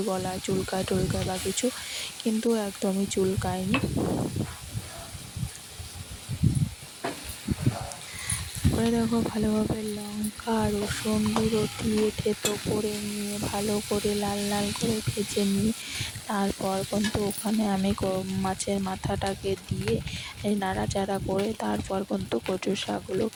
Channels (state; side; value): identical; both; correlation 1.00